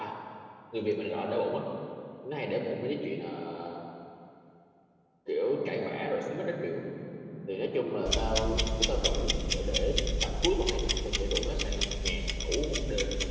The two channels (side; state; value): both; identical; correlation 1.00